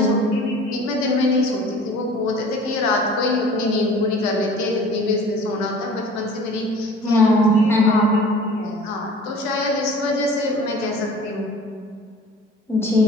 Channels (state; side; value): normal; both; correlation 0.46